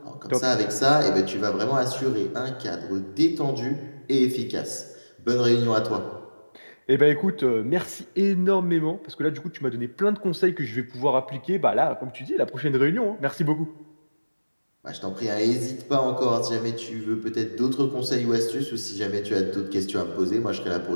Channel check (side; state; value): both; inverted; correlation -1.00